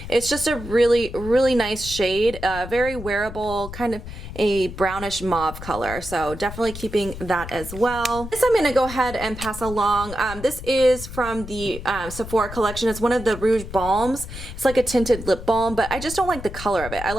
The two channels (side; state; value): left; noise; rumble, 11 dB below the sound